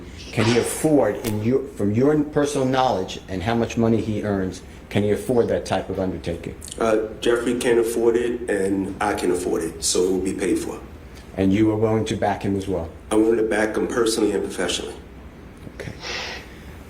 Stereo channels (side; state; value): both; identical; correlation 1.00